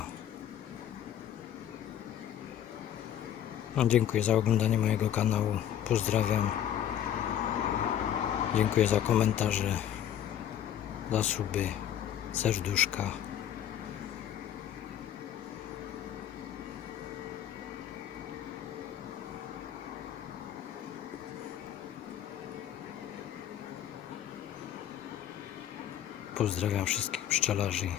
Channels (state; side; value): quieter; right; 10.6 dB